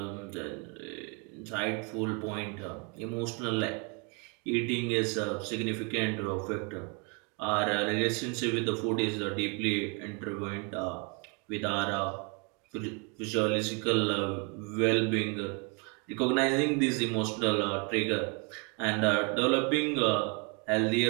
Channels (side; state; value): left; quieter; 33.9 dB